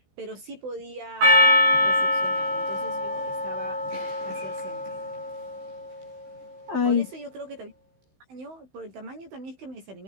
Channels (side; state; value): left; late; 16 ms